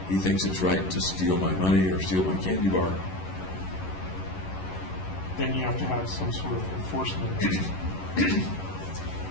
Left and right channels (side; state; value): right; late; 11 ms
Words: He thinks it's right to steal my money or steal my candy bar. Then you have to have some sort of enforcement